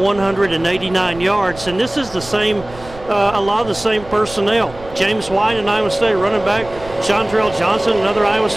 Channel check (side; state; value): right; noise; rumble, 18 dB below the sound